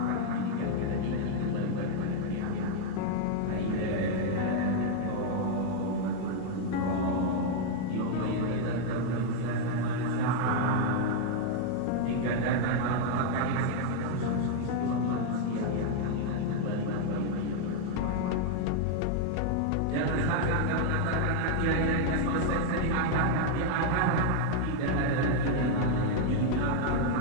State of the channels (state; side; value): different; both; correlation 0.00